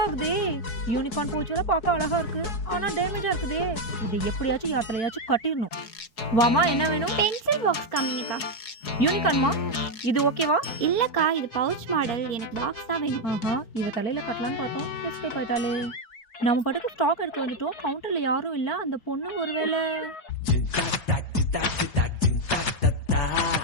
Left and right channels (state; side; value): late; right; 4.8 ms